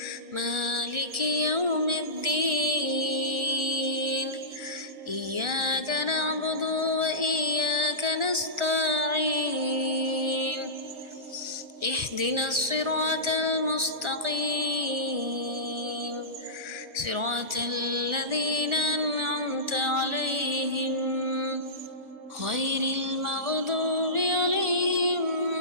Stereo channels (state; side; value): late; left; 1.4 ms